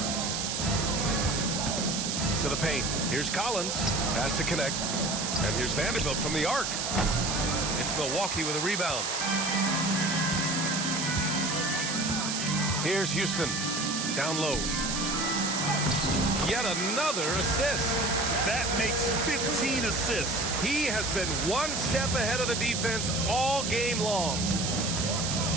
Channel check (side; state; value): right; noise; hiss, 2 dB below the sound